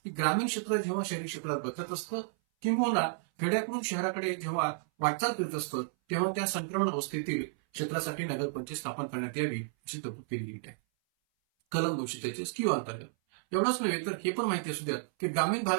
की ग्रामीण क्षेत्र जेव्हा शहरी क्षेत्रात बदलत असतं किंवा खेड्याकडून शहराकडे जेव्हा वाटचाल करत असतं तेव्हा त्या संक्रमण अवस्थेतील क्षेत्रासाठी नगरपंचायत स्थापन करण्यात यावी अशी तरतूद केली गेली आहे कलम 243Q अंतर्गत. एवढंच नव्हे तर हे पण माहिती असू द्या की ग्रामीण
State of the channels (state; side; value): silent; left; 56 dB below the other